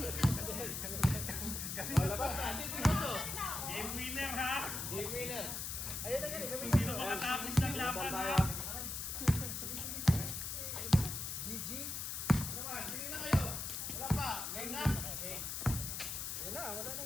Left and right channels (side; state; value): left; noise; hiss, 4 dB below the sound